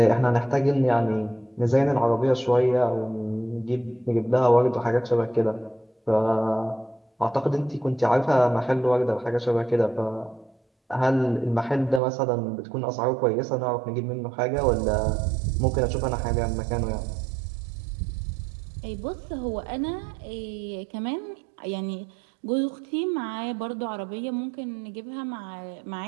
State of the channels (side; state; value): left; drops out; at 12.0 s